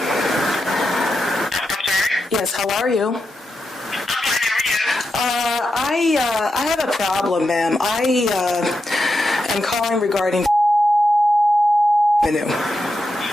sorry? Yes, how are you? I'm fine, how are you? I have a problem, ma'am. I am calling regarding revenue.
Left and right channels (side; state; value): both; normal; correlation 0.87